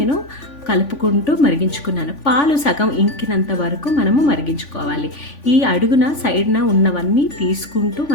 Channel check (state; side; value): late; right; 3.5 ms